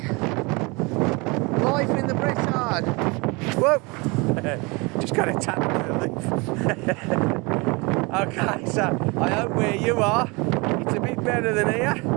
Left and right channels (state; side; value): quieter; left; 27.4 dB